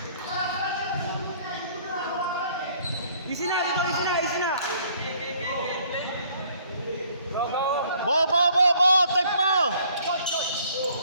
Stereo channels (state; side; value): inverted; both; correlation -0.60